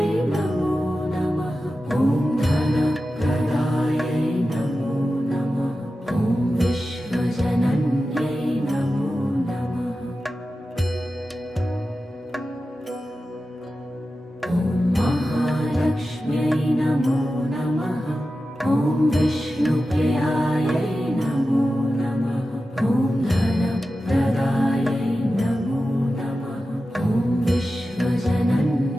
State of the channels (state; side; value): normal; both; correlation 0.93